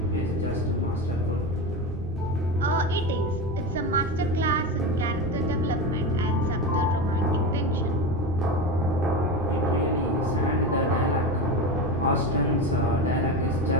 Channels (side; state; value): both; normal; correlation 0.22